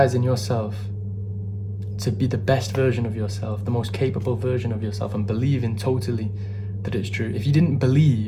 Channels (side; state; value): both; identical; correlation 1.00